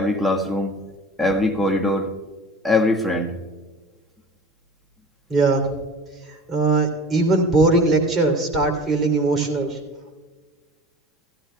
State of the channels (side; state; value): both; normal; correlation 0.40